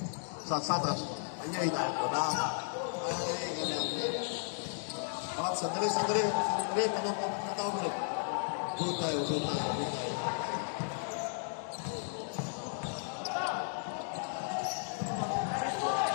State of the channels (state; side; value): silent; right; digital silence